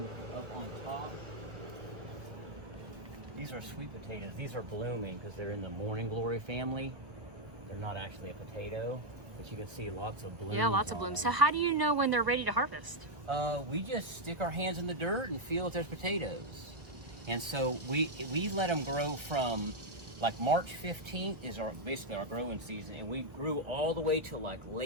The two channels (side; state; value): left; late; 1.3 ms